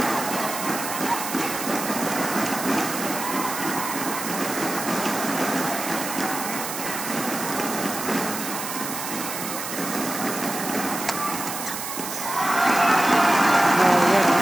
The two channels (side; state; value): right; noise; hiss, 6 dB below the sound